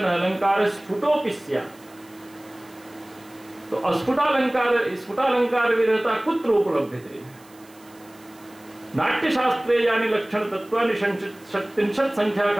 अलंकार स्फुटोपि स्यात्। तो स्फुटालंकार विरहता कुत्र उपलभ्यते? नाट्यशास्त्रे यानि लक्षण तत्वानि 37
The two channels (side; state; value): right; noise; hiss, 27 dB below the sound